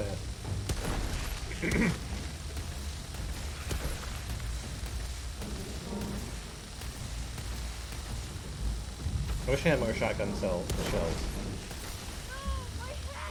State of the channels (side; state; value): both; identical; correlation 1.00